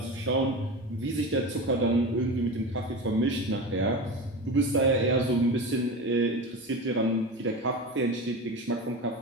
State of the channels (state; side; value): normal; both; correlation 0.27